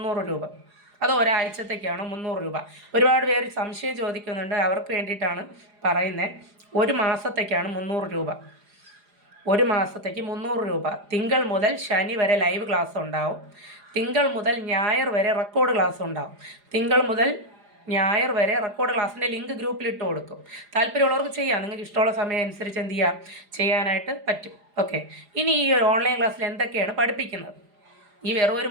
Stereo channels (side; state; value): left; late; 4.9 ms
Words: രൂപ, അത് ഒരാഴ്ചത്തേക്കാണോ 300 രൂപ? ഒരുപാട് പേര് സംശയം ചോദിക്കുന്നുണ്ട്. അവർക്ക് വേണ്ടിയിട്ടാണ് പറയുന്നത്. ഒരു മാസത്തേക്കാണ് 300 രൂപ. ഒരു മാസത്തേക്ക് 300 രൂപ. തിങ്കൾ മുതൽ ശനി വരെ ലൈവ് ക്ലാസ് ഉണ്ടാവും. തിങ്കൾ മുതൽ ഞായർ വരെ റെക്കോർഡ് ക്ലാസ് ഉണ്ടാവും. തിങ്കൾ മുതൽ ഞായർ വരെ റെക്കോർഡ് ക്ലാസ്സിൻ്റെ ലിങ്ക് ഗ്രൂപ്പിൽ ഇട്ട് കൊടുക്കും. താല്പര്യമുള്ളവർക്ക് ചെയ്യാം. നിങ്ങൾക്ക് ഇഷ്ടമുള്ള സമയം അനുസരിച്ച് എന്ത് ചെയ്യാം, ചെയ്യാനായിട്ട് പറ്റും. ഓക്കെ, ഇനി ഈ ഒരു ഓൺലൈൻ ക്ലാസ്സിൽ എന്തൊക്കെയാണ് പഠിപ്പിക്കുന്നത്, ഈ വെറും ഒരു